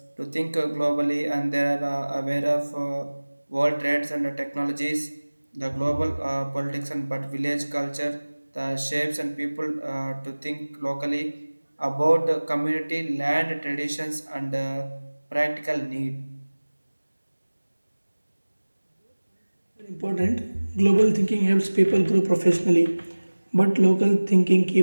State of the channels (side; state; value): both; inverted; correlation -1.00